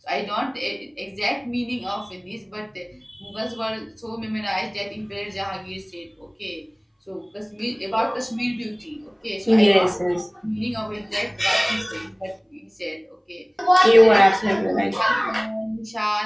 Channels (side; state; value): both; identical; correlation 1.00